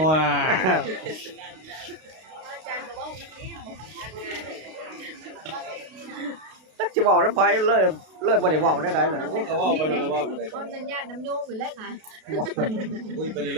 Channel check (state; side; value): late; left; 32 ms